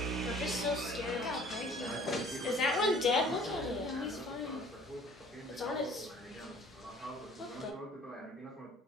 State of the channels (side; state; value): both; normal; correlation 0.52